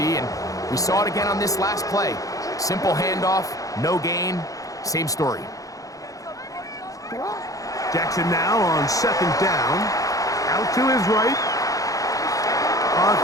and we saw it again on this last play. Simple handoff, no gain, same story. Jackson now on 2nd down. Out to his right. On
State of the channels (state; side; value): late; right; 0.17 ms